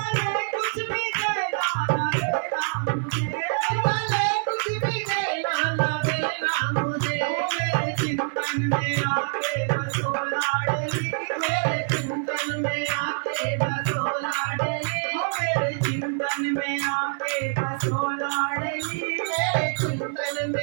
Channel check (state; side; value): silent; left; 57 dB below the other